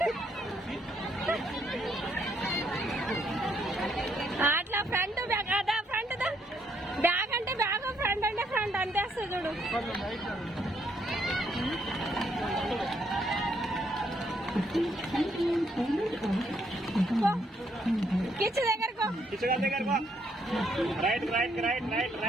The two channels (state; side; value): normal; both; correlation 0.72